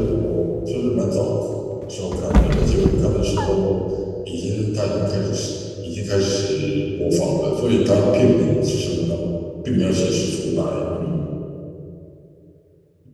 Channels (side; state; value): both; identical; correlation 1.00